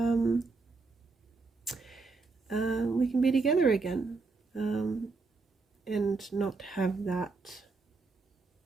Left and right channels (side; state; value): left; quieter; 4.0 dB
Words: we can be together again, and not have that